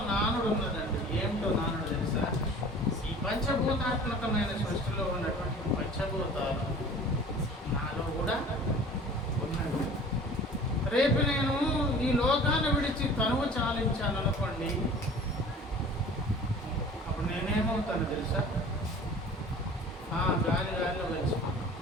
పంచభూతాత్మకమైన సృష్టిలో ఉన్నటువంటి పంచభూతాలు నాలో కూడా ఉన్నది. రేపు నేను ఈ లోకాన్ని విడిచి తనువు చాలించాను అనుకోండి, అప్పుడు నేనేమవుతాను తెలుసా? గాలిలో కలిసిపోతాను,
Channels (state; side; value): normal; both; correlation 0.44